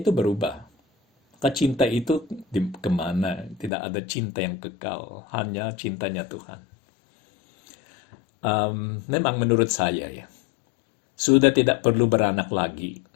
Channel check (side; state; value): right; drops out; at 3.7 s